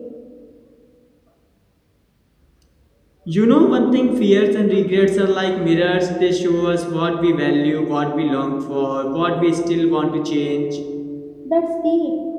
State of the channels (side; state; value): both; identical; correlation 1.00